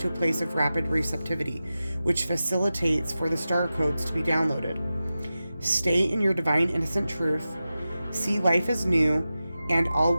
a place of rapid receptivity, which facilitates for the star codes to be downloaded. Stay in your divine innocent truth. See life as new, and all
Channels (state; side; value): inverted; both; correlation -0.94